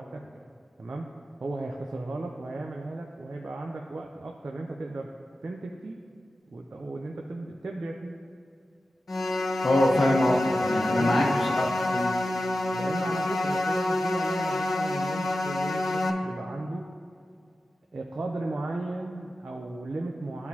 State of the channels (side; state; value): both; normal; correlation 0.92